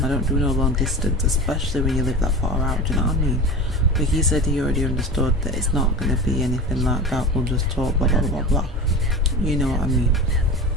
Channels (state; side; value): normal; both; correlation 0.31